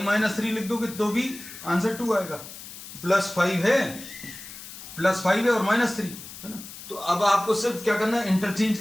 - 3 लिख दोगे तो भी आंसर 2 आएगा। +5 है, +5 है और -3 है ना। तो अब आपको सिर्फ क्या करना है, इंटरचेंज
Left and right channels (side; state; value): left; noise; hiss, 14 dB below the sound